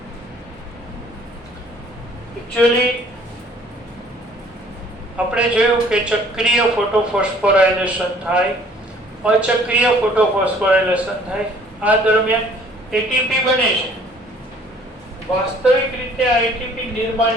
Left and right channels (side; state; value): both; normal; correlation 0.56